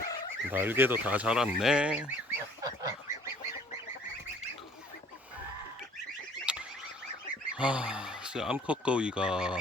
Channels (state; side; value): normal; both; correlation 0.55